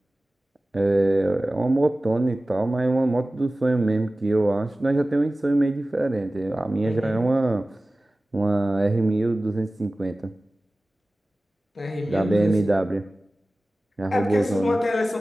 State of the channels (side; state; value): both; normal; correlation 0.97